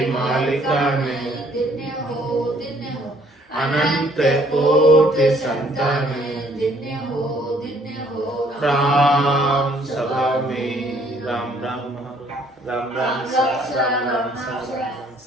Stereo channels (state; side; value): normal; both; correlation 0.62